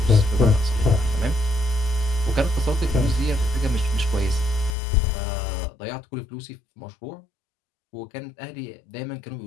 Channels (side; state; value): right; drops out; at 4.7 s